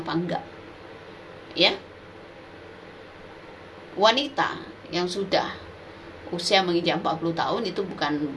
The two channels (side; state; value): both; identical; correlation 1.00